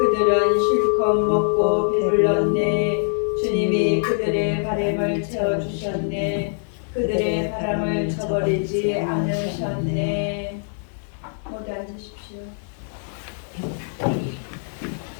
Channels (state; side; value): silent; right; 63 dB below the other